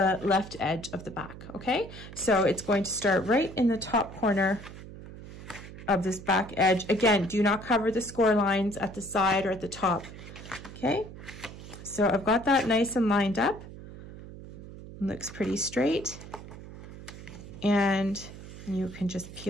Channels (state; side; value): noise; right; hum, 14 dB below the sound